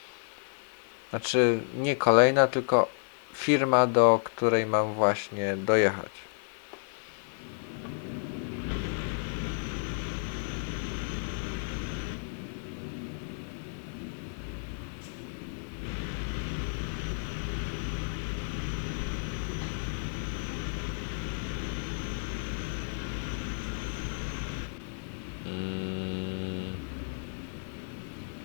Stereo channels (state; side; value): silent; right; digital silence